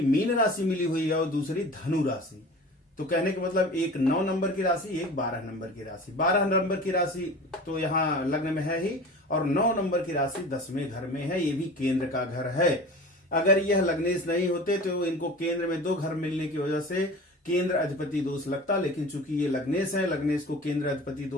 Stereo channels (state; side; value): normal; both; correlation 0.38